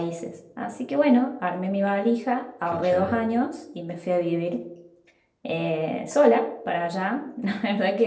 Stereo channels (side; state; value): both; identical; correlation 1.00